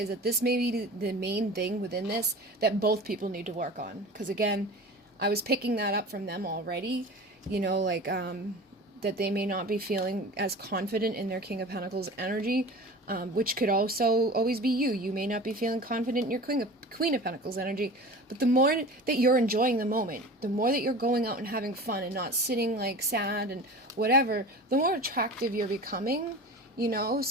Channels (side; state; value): both; normal; correlation 0.36